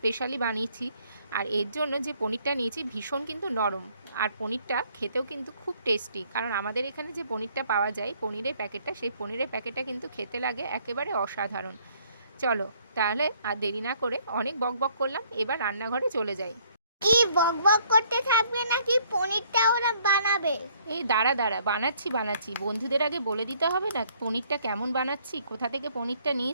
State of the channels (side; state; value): both; inverted; correlation -0.64